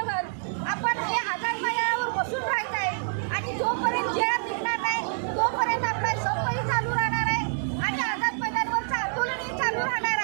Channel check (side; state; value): left; silent; digital silence